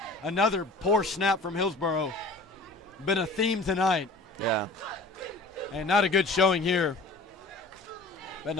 Another poor snap from Hillsboro. Been a theme tonight. Yeah. And not a good showing here. That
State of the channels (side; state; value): right; quieter; 3.1 dB